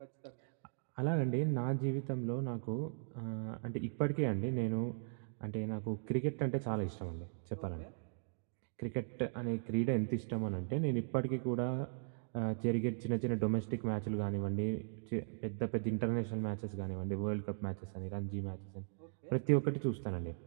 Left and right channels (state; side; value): silent; left; digital silence